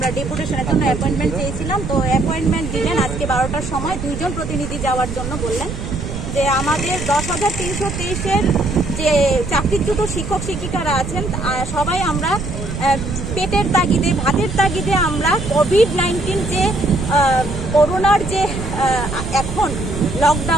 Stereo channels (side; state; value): right; noise; rumble, 6 dB below the sound